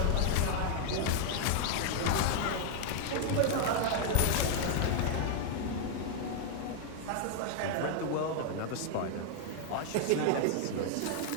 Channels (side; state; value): both; different; correlation 0.00